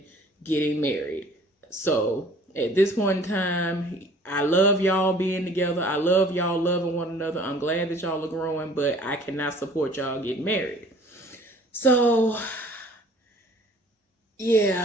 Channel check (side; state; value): both; normal; correlation 0.52